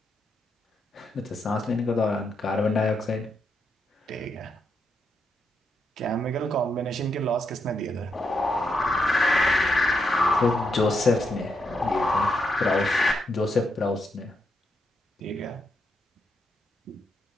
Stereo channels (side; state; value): both; normal; correlation 0.81